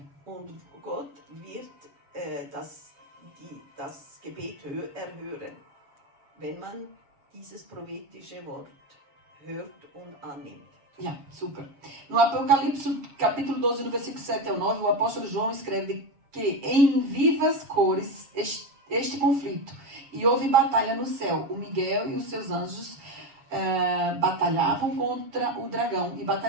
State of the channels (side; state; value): left; late; 7.2 ms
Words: Und Gott wird das Gebet erhören, wenn man dieses prophetische Wort hört und annimmt. Ja, super. No Apocalipse, capítulo 12, no versículo 7 ao 9, o apóstolo João escreve que em vivas cores este conflito. E houve batalha no céu. O Miguel e os seus anjos batalhavam contra o dragão. E